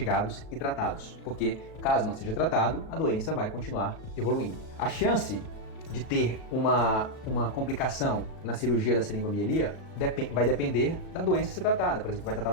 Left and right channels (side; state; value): right; late; 37 ms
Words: e tratados, porque caso não seja tratado, a doença vai continuar evoluindo. A chance de ter uma complicação na cirurgia da seringomiyelia vai depender da doença a ser tratada. Por exemplo, se vai tratar